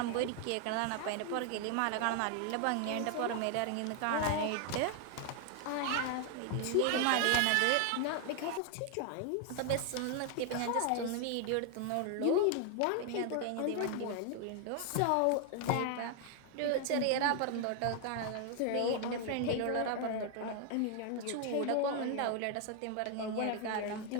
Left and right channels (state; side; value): different; both; correlation 0.00